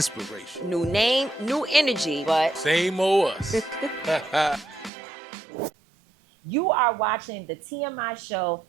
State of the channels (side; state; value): left; drops out; at 4.9 s